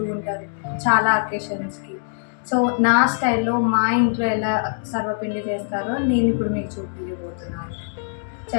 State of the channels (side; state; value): right; silent; digital silence